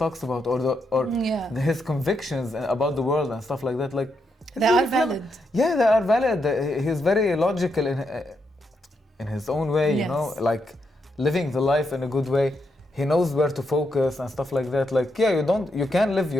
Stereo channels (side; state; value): both; normal; correlation 0.81